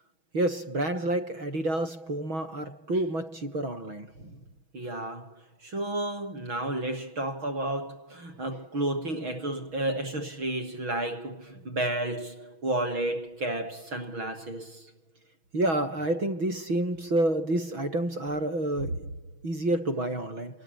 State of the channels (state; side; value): late; left; 6.2 ms